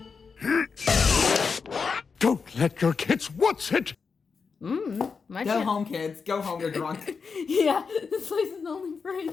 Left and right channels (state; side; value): quieter; right; 5.3 dB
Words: Don't let your kids watch it! My Go home, kids. Go home, you're drunk. Yeah, this place is only for